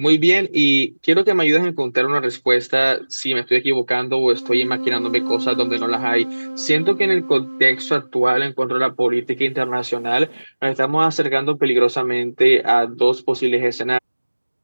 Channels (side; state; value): both; inverted; correlation -1.00